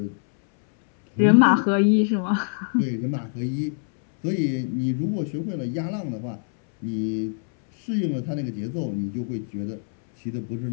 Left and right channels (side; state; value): right; silent; 62 dB below the other